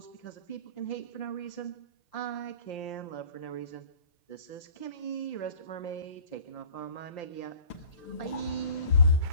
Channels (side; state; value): right; late; 5.8 ms